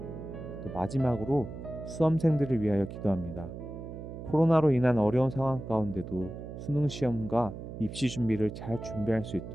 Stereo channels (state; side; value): noise; right; hum, 10 dB below the sound